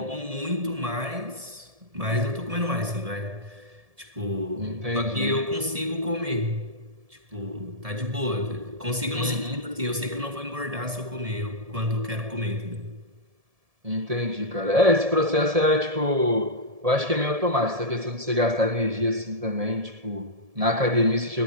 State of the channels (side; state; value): left; late; 1.7 ms